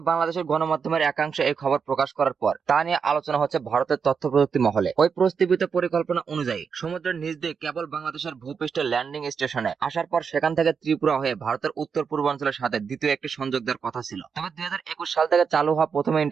বাংলাদেশের গণমাধ্যমের একাংশে এই খবর প্রকাশ করার পর তা নিয়ে আলোচনা হচ্ছে ভারতের তথ্য প্রযুক্তি মহলে। ওই প্রস্তাবিত পরিকল্পনা অনুযায়ী সমুদ্রের নিচ দিয়ে কেবল বাংলাদেশের ভূপৃষ্ঠে ল্যান্ডিং স্টেশনে আসার পর সেখান থেকে ত্রিপুরা হয়ে ভারতের উত্তর পূর্বাঞ্চলের সাথে দ্বিতীয় একটি সংযোগ দেওয়ার কথা ছিল। তবে ২০২১ সাল থেকে চালু হওয়া প্রথম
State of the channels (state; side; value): quieter; left; 6.1 dB